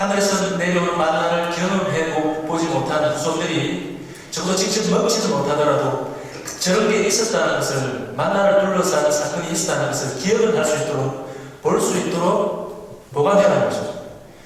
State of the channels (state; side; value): identical; both; correlation 1.00